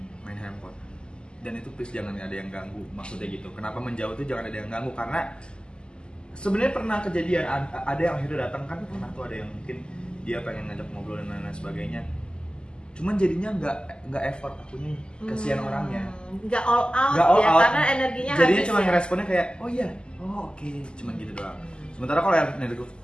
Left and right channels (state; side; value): late; right; 0.048 ms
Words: main handphone. Dan itu please jangan ada yang ganggu, maksudnya gitu. Kenapa menjauh tuh jangan ada yang ganggu, karena sebenarnya pernah kejadian ada yang akhirnya datang kan, pernah tuh ada yang mungkin dia pengen ngajak ngobrol dan lain-lain sebagainya, cuman jadinya nggak effort, akunya kasihan orangnya, nggak all out out. Karena energinya jadinya cuma ya? ngeresponnya kayak oh iya, oh oke, cuman gitu doang. Sementara kalau